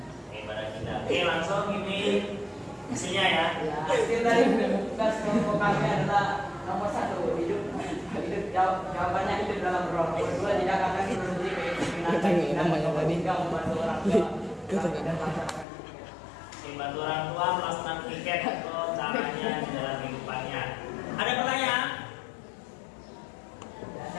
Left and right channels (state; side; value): drops out; right; at 15.7 s